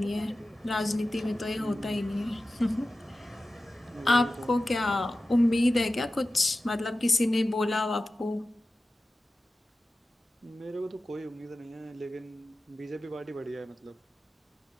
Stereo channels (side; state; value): both; normal; correlation 0.95